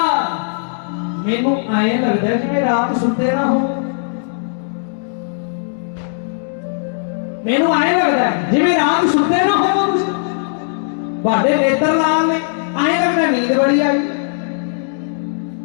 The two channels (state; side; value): silent; right; digital silence